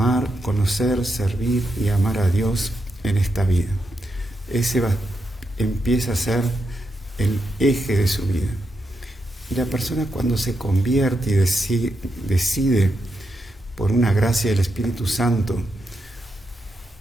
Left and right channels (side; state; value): both; normal; correlation 0.84